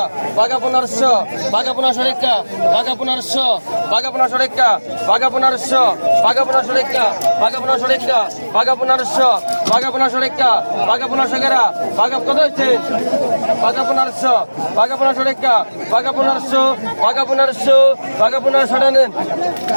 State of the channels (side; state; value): both; inverted; correlation -1.00